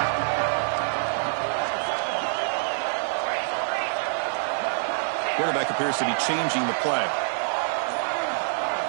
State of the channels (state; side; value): silent; left; digital silence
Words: Quarterback appears to be changing the play.